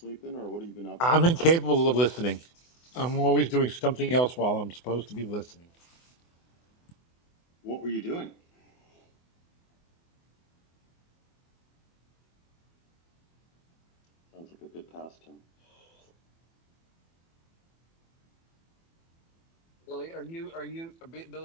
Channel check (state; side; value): late; right; 24 ms